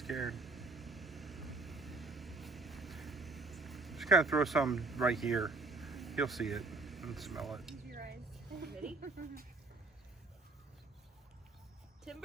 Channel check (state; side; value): quieter; left; 3.3 dB